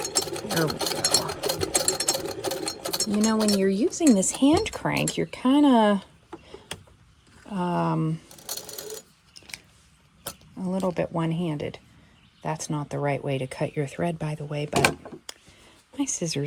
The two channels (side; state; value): both; identical; correlation 1.00